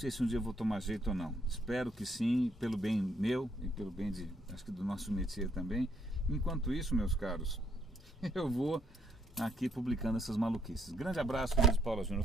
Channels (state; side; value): normal; both; correlation 0.70